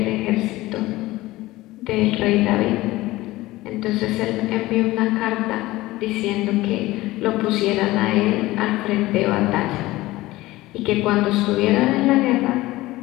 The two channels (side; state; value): right; quieter; 18.3 dB